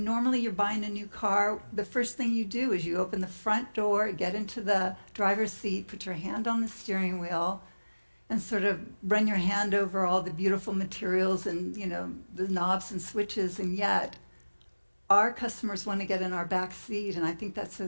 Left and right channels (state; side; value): inverted; both; correlation -1.00